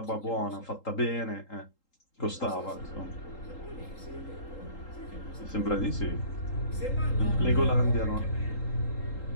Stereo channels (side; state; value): right; late; 3.8 ms